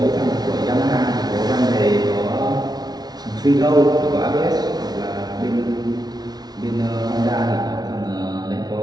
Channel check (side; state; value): left; late; 0.19 ms